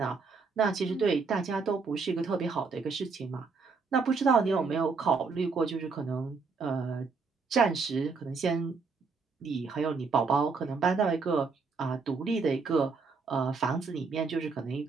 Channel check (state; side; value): quieter; left; 4.7 dB